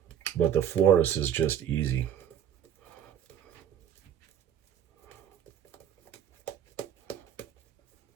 But the Floris is just easy.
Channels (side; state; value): left; quieter; 9.4 dB